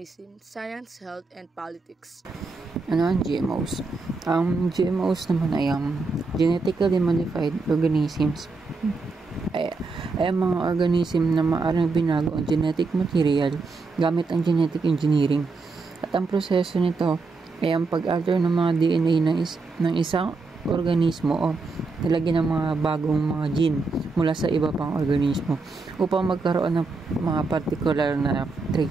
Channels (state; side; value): quieter; left; 3.9 dB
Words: science, health, and politics. Ano ang GMOs? Ang GMOs naman ay genetically modified organisms. Ay mga organism na maaaring binago ang genetic material gamit ang genetic engineering. At ang proseso nito ay ang pag-alter ng mga DNA ng isang organismo o nilagyan ng mga bagong mga gene mula sa iba pang organismo upang magkaroon ng mga particular na